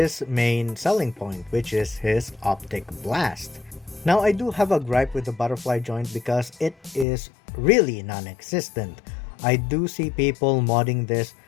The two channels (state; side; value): drops out; right; at 7.1 s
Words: main selling point, which is his optic blast. Now, I do have a gripe with the butterfly joint because it is really non-existent. I do see people modding this